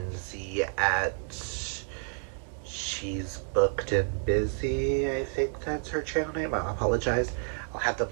at She's Booked and Busy. I think that's her channel name. I apologize. I'll have them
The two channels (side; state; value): left; quieter; 37.8 dB